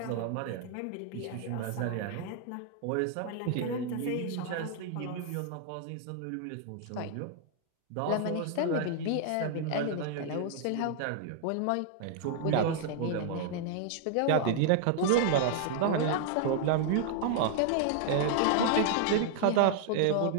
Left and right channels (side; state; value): both; different; correlation 0.00